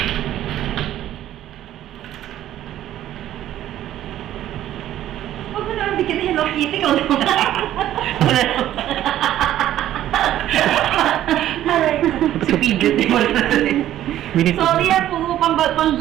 Huwag mo naman bigyan na Hello Kitty ko naman. Si Pidget, di mo Sorry yan, puro pang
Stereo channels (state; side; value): quieter; left; 12.5 dB